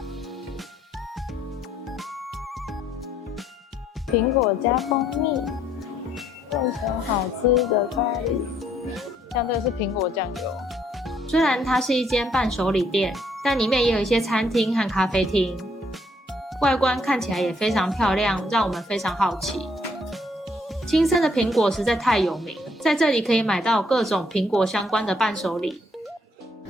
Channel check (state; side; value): normal; both; correlation 0.69